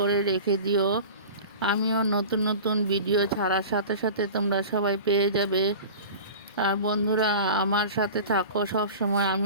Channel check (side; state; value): both; inverted; correlation -0.36